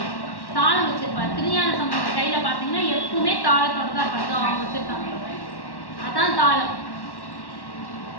தாளம் வச்சிருப்பாரு. திருஞான சம்பந்தர் கையில பார்த்தீங்கன்னா எப்பவுமே தாளத்தோட தான் இருப்பாங்க. அவங்க வச்சிருக்காங்க, அதான் தாளம்.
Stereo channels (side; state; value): right; late; 1.1 ms